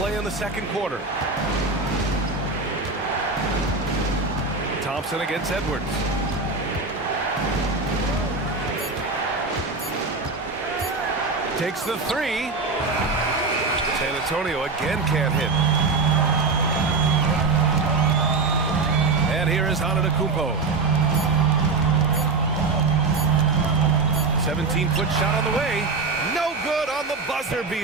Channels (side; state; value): left; quieter; 4.0 dB